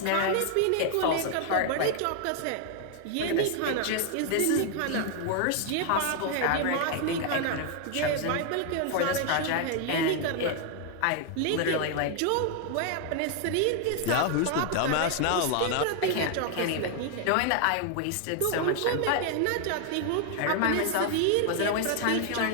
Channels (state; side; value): different; both; correlation 0.00